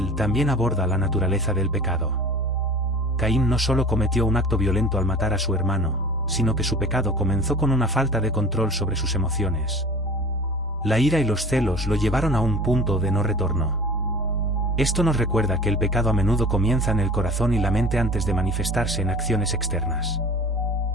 también aborda la naturaleza del pecado. Caín no solo cometió un acto violento al matar a su hermano, sino que su pecado comenzó con una falta de control sobre sus emociones. La ira y los celos lo llevaron a un punto de no retorno. Esto nos recuerda que el pecado a menudo comienza en el corazón y la mente antes de manifestarse en acciones externas.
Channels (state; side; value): normal; both; correlation 0.41